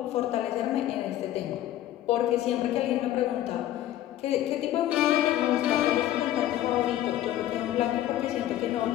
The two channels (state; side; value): quieter; right; 13.1 dB